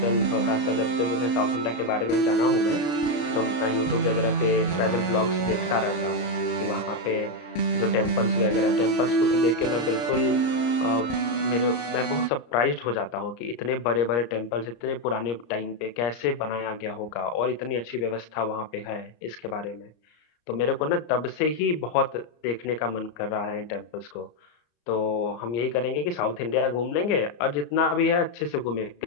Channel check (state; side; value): late; right; 34 ms